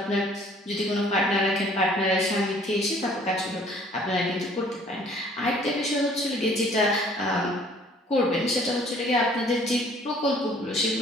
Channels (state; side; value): normal; both; correlation 0.56